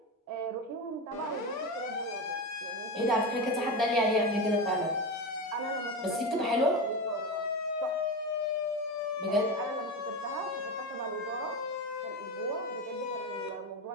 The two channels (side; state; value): both; normal; correlation 0.19